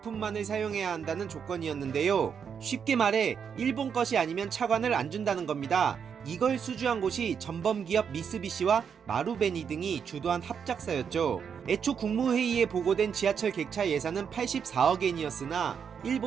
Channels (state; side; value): quieter; left; 7.1 dB